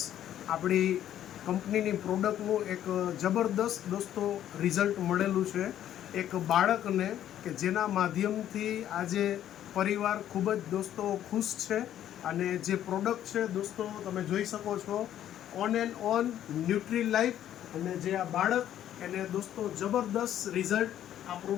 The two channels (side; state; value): right; quieter; 11.3 dB